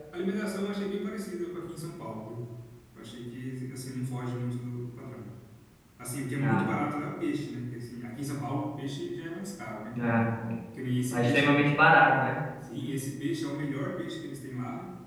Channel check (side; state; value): both; identical; correlation 1.00